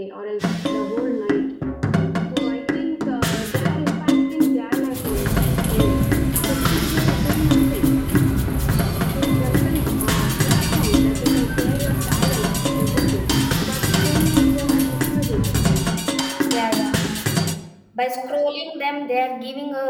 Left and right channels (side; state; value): both; identical; correlation 1.00